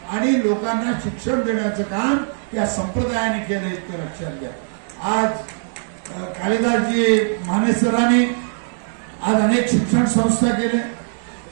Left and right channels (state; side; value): silent; left; 65 dB below the other